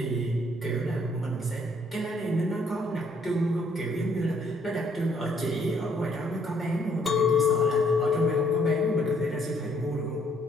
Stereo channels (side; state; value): both; normal; correlation 0.66